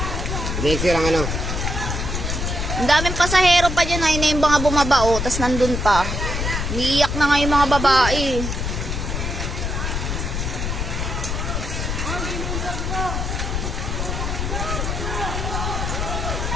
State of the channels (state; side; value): noise; left; rumble, 2 dB below the sound